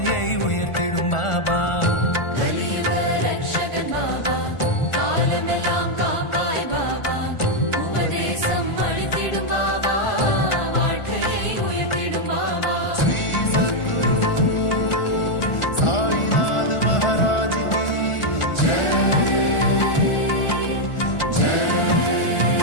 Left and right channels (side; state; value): right; late; 1.4 ms